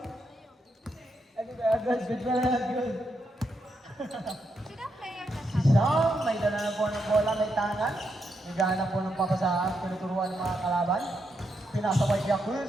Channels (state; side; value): normal; both; correlation 0.81